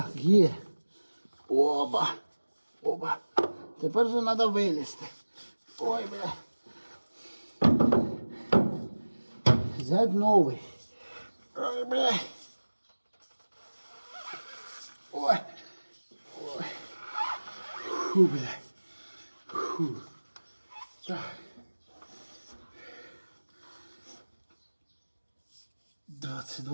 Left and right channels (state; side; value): inverted; both; correlation -1.00